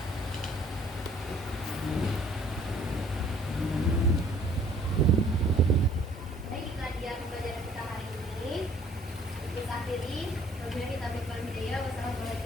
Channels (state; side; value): normal; both; correlation 0.57